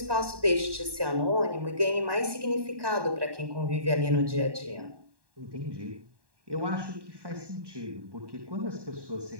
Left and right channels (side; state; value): left; late; 1.1 ms